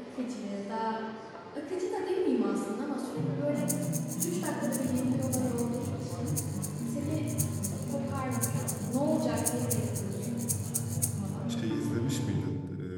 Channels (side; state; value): both; identical; correlation 1.00